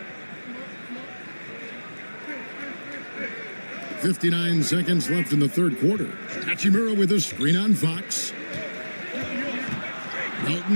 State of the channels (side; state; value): both; inverted; correlation -1.00